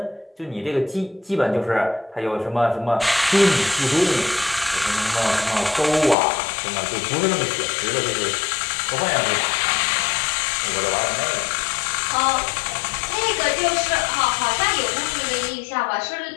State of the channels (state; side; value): drops out; right; at 6.2 s